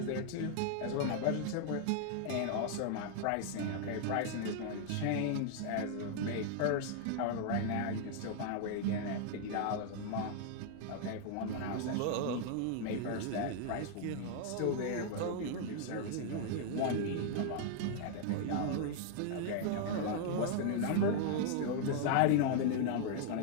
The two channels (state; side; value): different; both; correlation 0.00